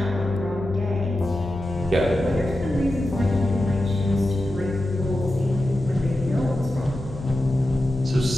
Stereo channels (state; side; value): noise; left; hum, 15 dB below the sound